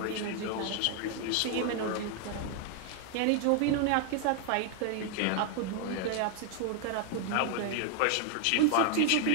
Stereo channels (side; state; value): both; different; correlation 0.00